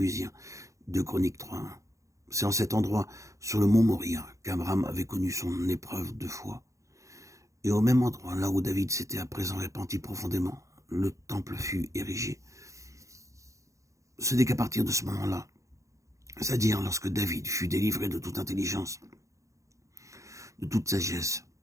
de Chroniques 3:1. C'est en cet endroit, sur le mont Moria, qu'Abraham avait connu son épreuve de foi. Et au même endroit, là où David s'était à présent repenti profondément, le temple fut érigé. Ce n'est qu'à partir de ce moment-là, c'est-à-dire lorsque David fut délivré de toute intelligence, de toute sagesse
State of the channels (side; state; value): left; late; 0.15 ms